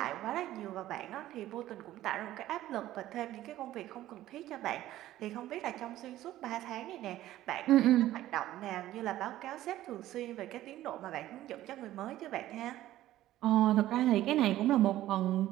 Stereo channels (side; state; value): left; quieter; 14.3 dB